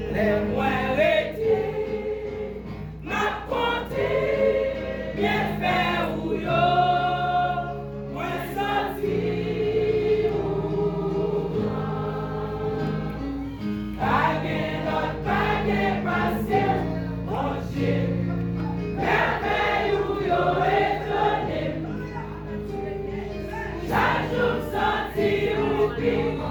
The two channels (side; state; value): both; identical; correlation 1.00